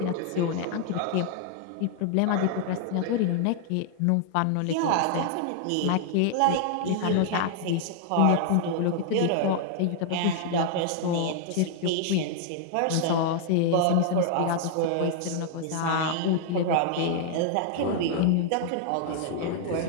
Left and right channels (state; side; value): different; both; correlation 0.00